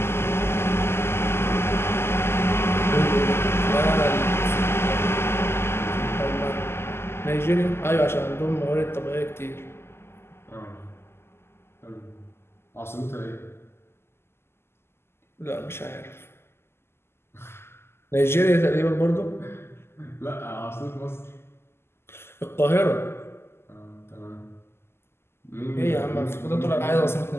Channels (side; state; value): right; late; 0.12 ms